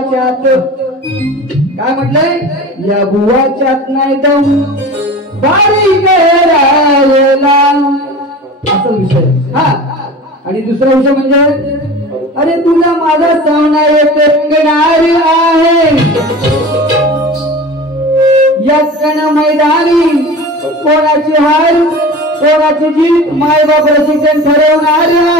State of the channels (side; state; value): both; normal; correlation 0.36